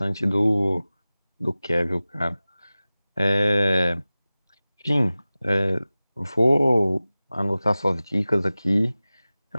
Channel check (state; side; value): inverted; both; correlation -0.97